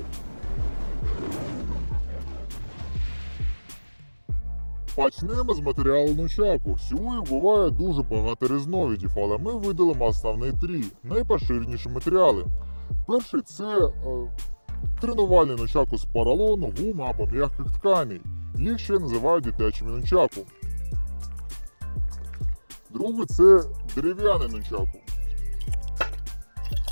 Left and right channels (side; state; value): both; inverted; correlation -1.00